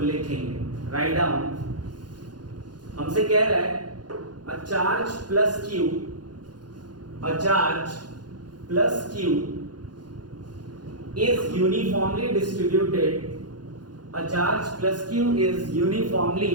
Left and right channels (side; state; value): left; late; 0.69 ms